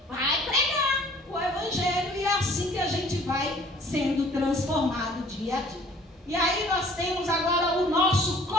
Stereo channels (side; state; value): both; normal; correlation 0.53